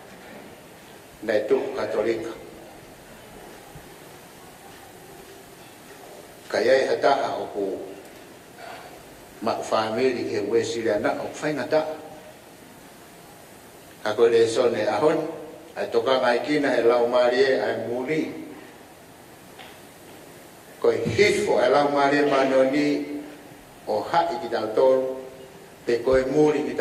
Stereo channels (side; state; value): both; identical; correlation 1.00